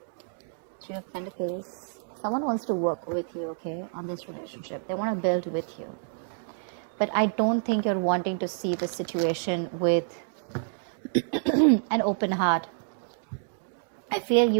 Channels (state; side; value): silent; left; digital silence